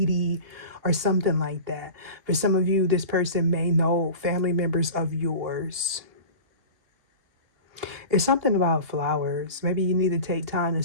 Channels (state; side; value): late; left; 2.8 ms